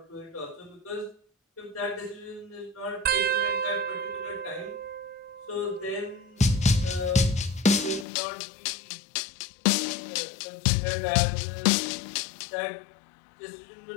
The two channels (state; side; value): drops out; right; at 8.1 s